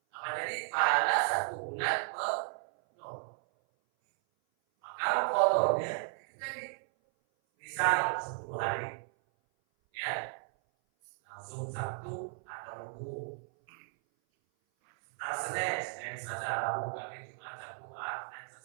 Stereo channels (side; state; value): left; silent; 55 dB below the other